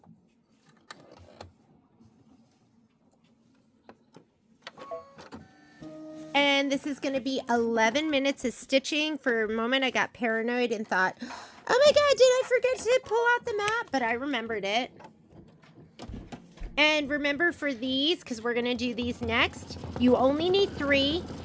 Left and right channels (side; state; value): both; identical; correlation 1.00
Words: And this is going to be 11 minutes of stitching. For a moment, I got paranoid and thought, oh my God, did I forget to pull out the map? But I remembered it. And remember for these, because we're going to do these next, you only need 3,